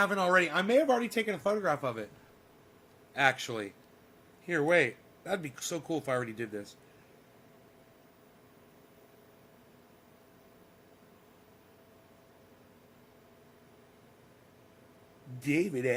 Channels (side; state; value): both; identical; correlation 1.00